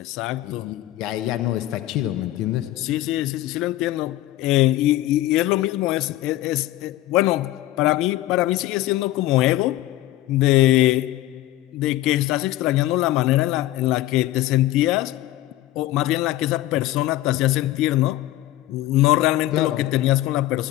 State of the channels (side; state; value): right; quieter; 15.4 dB